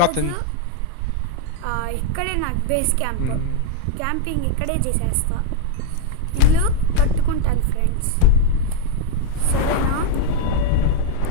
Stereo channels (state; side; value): different; both; correlation 0.00